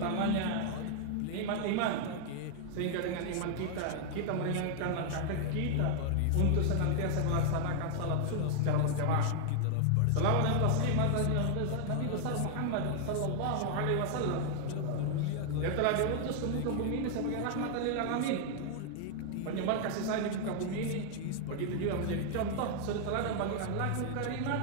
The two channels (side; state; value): both; different; correlation 0.00